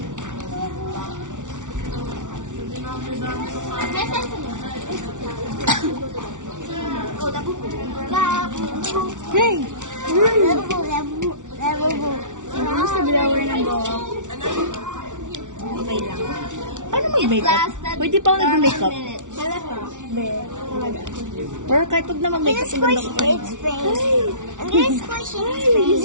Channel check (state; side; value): late; left; 0.87 ms